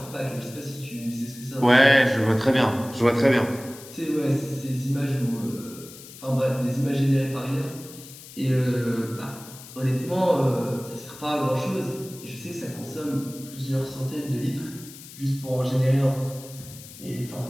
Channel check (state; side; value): noise; left; hiss, 17 dB below the sound